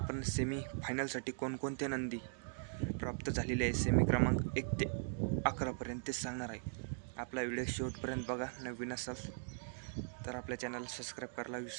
सेमी फायनलसाठी कोणकोणते नंदी प्राप्त झालेले आहे सेमी क्रमांक 1 ते 11 पर्यंत ते सांगणार आहे. आपला व्हिडिओ शेवटपर्यंत बघा. नवीन असाल तर आपल्या चॅनलला सबस्क्राईब करायला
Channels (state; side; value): silent; left; digital silence